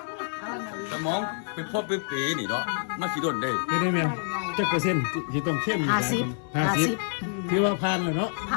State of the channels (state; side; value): silent; right; 60 dB below the other